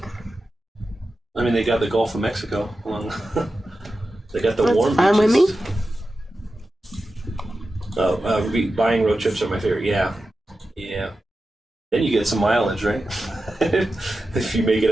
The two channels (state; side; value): normal; both; correlation 0.92